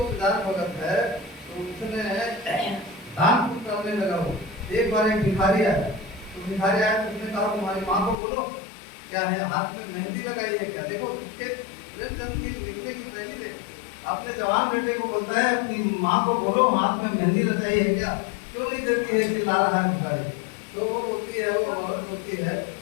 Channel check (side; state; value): right; drops out; at 8.2 s